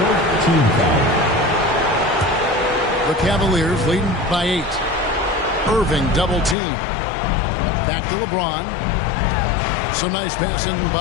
Team foul. The Cavaliers leading by 8. Irving double team. Back to LeBron. Some nice passing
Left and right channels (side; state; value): right; drops out; at 6.6 s